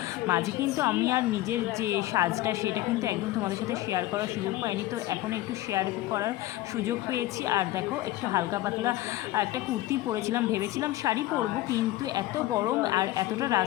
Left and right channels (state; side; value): quieter; right; 16.2 dB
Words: মাঝে কিন্তু আমি আর নিজের যে সাজটা সেটা কিন্তু একদম তোমাদের সাথে শেয়ার করার সুযোগ পাইনি, তো এখন একটু শেয়ার করার সুযোগ পেয়েছি। আর দেখো একটু হালকা পাতলা একটা কুর্তি পরেছিলাম, ভেবেছিলাম শাড়ি পরবো, কিন্তু এত গরম আর এতটা